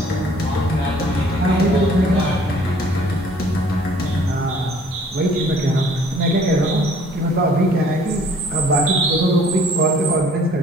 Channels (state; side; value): normal; both; correlation 0.56